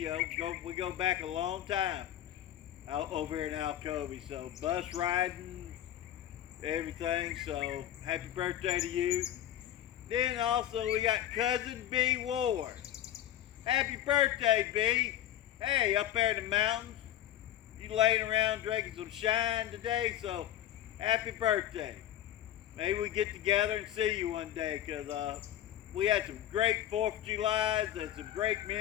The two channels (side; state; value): right; quieter; 12.0 dB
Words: We go back a long time out over here in Alcovy. So bus riding, everything. So happy birthday to you. Then also we got cousin B Ward. Happy birthday, B. Hey, up there in the mountains. You laying around drinking some shine today, so happy birthday. Maybe we get together and see you one day, because we had some great 4th of Julys and some great